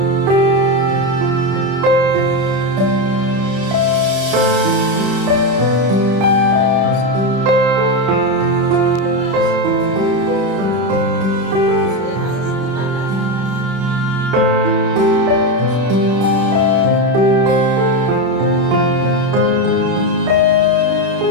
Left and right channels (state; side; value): late; left; 31 ms